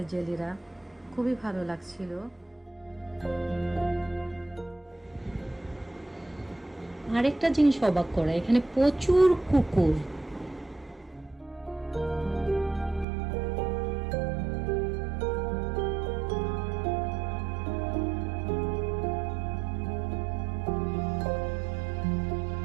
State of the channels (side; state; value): left; drops out; at 13.1 s